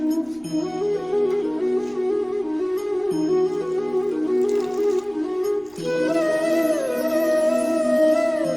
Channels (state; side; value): noise; right; rumble, 29 dB below the sound